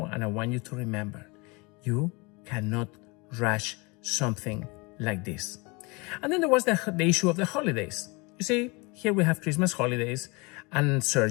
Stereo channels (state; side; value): quieter; right; 27.6 dB